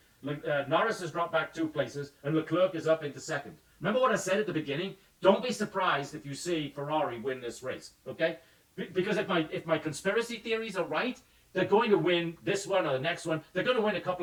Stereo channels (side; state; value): both; identical; correlation 1.00